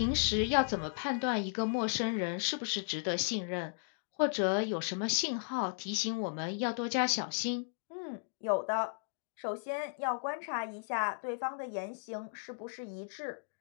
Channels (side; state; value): right; silent; digital silence